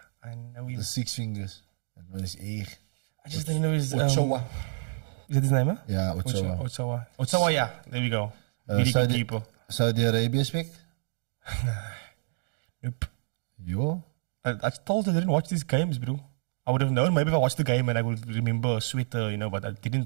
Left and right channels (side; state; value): left; silent; digital silence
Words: I know him. the six fingers. That one is echt. I just don't know his... Ochoa. Is that his name, huh? Yeah, Ochoa. Ochoa, yeah. There we go. Really good keeper. Saudi Arabia speak? Nope. Yo. I told you I didn't watch these games, bro. I would have known maybe if I watched the game and I would remember a sweater, but I